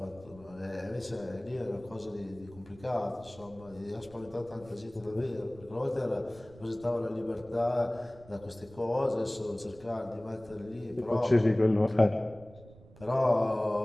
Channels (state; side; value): noise; right; rumble, 21 dB below the sound